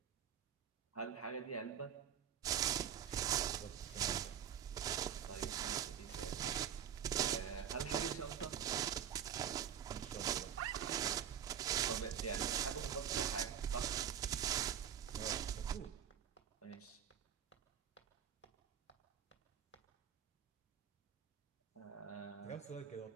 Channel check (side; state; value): left; quieter; 9.1 dB